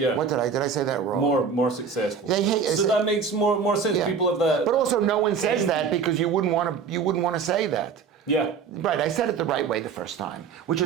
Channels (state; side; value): quieter; left; 6.0 dB